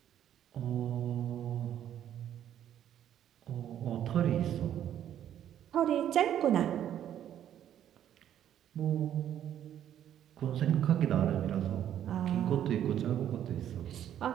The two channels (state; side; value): quieter; left; 10.6 dB